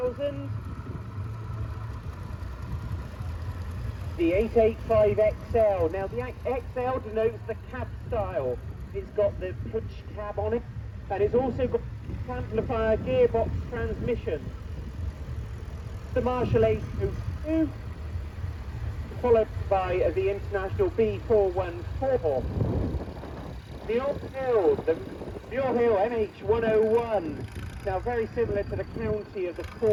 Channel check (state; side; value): identical; both; correlation 1.00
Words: The 885XL. Now, the XL denotes the cab style. It's got the push cab on it, and it's also got amplifier gearbox transmission. The Marshall 802, followed by the International B414. The All Hill, the All Hill MH101. Now very similar to the County of the